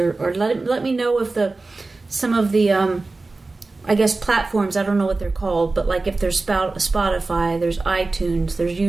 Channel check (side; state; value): left; quieter; 3.5 dB